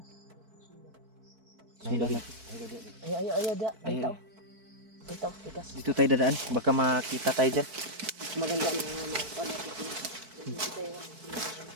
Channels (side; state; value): left; late; 4.6 ms